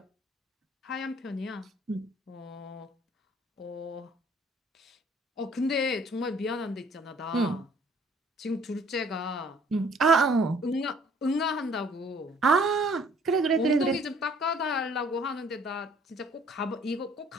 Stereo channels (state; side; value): normal; both; correlation 0.58